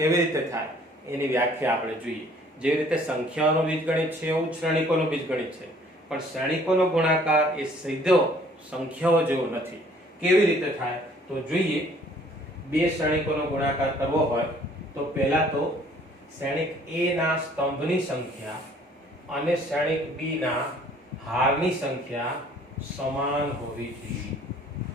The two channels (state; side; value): normal; both; correlation 0.57